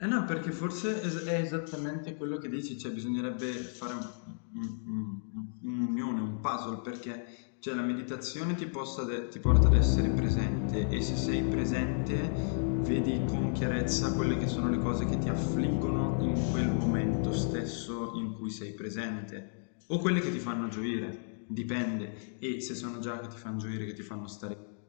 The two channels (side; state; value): right; silent; digital silence